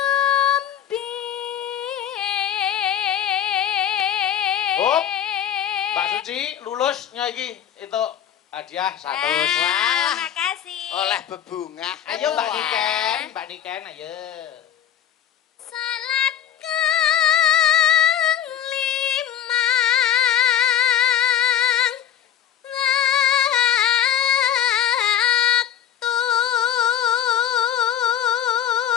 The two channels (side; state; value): right; quieter; 9.8 dB